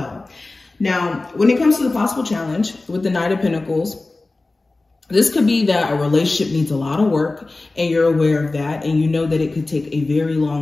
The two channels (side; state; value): right; quieter; 3.2 dB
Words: Now, when it comes to the possible challenge with the Knight of Pentacles, this could be that a relationship needs a lot of work and you're aware of that, and you know that it could take a very